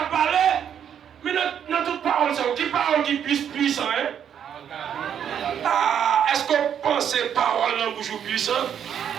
parlé. Mais dans toute parole, c'est qui parole qui puissant, hein? Ah, est-ce qu'on pense parole dans bouche puissante?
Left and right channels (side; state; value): left; quieter; 8.8 dB